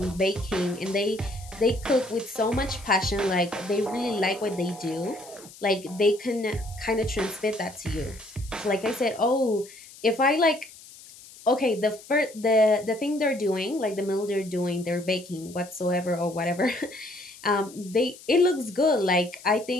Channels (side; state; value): left; noise; hiss, 19 dB below the sound